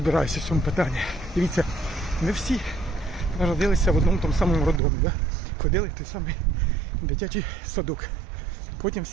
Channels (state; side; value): drops out; left; at 4.8 s